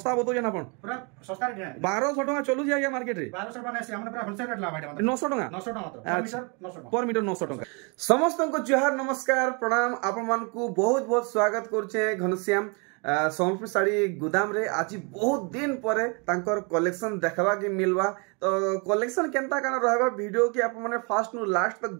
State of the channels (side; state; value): left; quieter; 33.0 dB